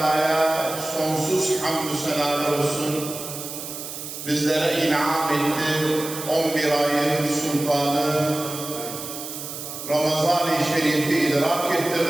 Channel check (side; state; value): right; noise; hiss, 9 dB below the sound